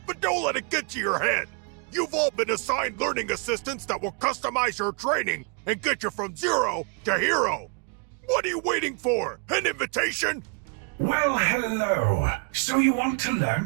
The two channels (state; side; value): quieter; left; 37.2 dB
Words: but don't let it get to your head. You've all been assigned learning assistants that will customize your training and get you from zero to hero. What are you waiting for? An invitation? Well, hello. So you want to learn